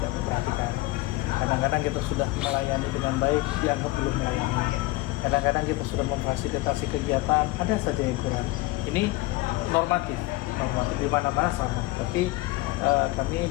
memperhatikan. Kadang-kadang kita sudah melayani dengan baik, dianggap belum melayani. Kadang-kadang kita sudah memfasilitasi kegiatan, ada saja yang kurang. Ini normatif di mana-mana sama. Tapi kami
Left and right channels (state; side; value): quieter; right; 20.1 dB